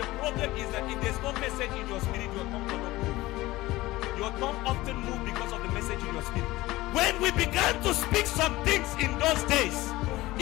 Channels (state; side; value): quieter; right; 18.6 dB